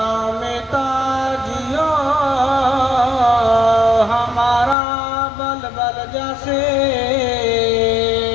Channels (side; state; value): right; drops out; at 4.8 s